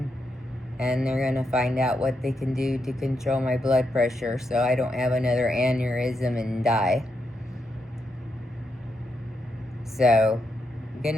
and they're gonna find out what they can do to control my blood pressure so I don't have another aneurysm and die. So, good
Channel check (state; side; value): normal; both; correlation 0.82